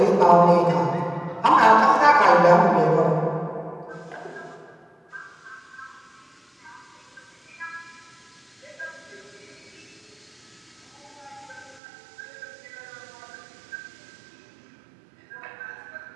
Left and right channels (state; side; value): drops out; left; at 11.8 s